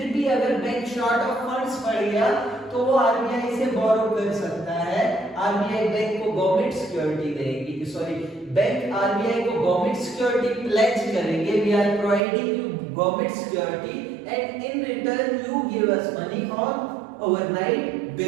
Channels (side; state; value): left; drops out; at 12.2 s